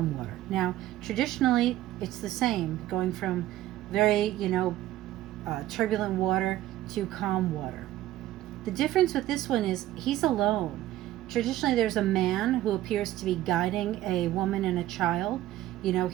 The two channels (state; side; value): quieter; left; 14.4 dB